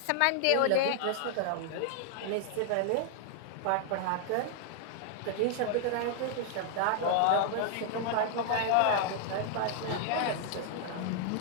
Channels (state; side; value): different; both; correlation 0.00